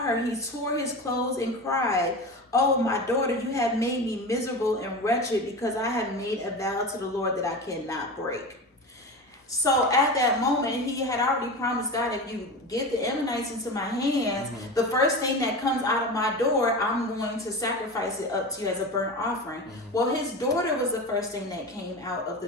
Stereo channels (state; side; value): normal; both; correlation 0.27